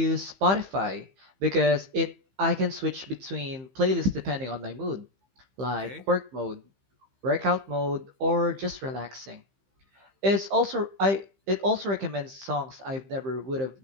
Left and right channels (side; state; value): left; late; 15 ms